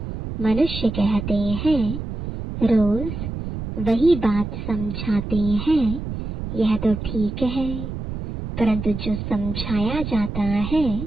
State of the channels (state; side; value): noise; right; rumble, 6 dB below the sound